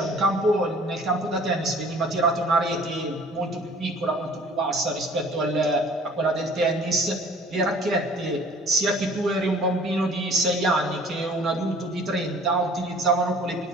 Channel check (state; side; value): normal; both; correlation 0.51